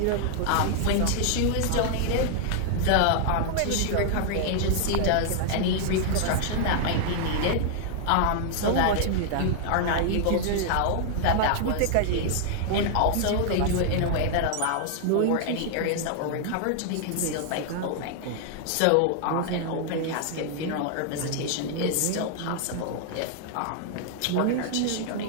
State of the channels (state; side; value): different; both; correlation -0.01